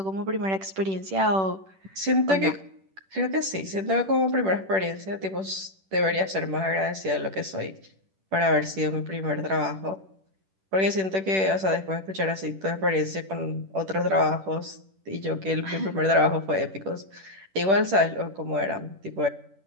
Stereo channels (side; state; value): left; late; 10 ms